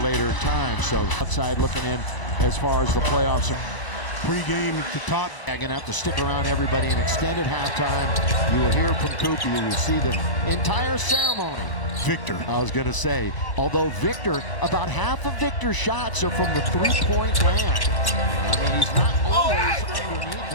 later time. So outside looking in as far as the playoffs are. Pre-game at the top. I'm going to have to stick around everybody in extended halftime. You will hear from Coop. You will see the entire ceremony. Victor. I was going to say, although Victor, about half of Victor's shots are from the three-point land. I mean, he's not always underneath,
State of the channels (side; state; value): right; late; 1.0 ms